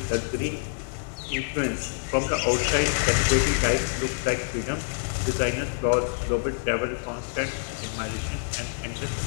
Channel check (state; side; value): silent; right; 60 dB below the other